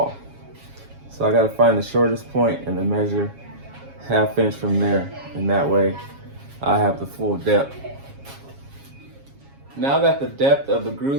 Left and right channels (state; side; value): late; left; 7.3 ms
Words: So I gotta find the shortest point and then measure 1/2 inch from there. And that way I have the full depth. Now that the depth of the